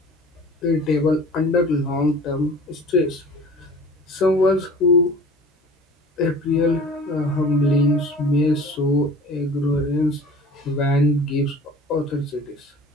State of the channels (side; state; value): both; normal; correlation 0.42